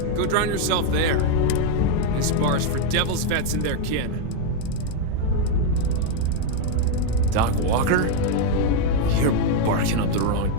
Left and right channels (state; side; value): different; both; correlation 0.01